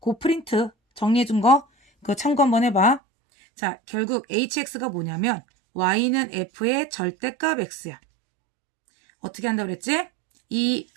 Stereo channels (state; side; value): drops out; left; at 3.0 s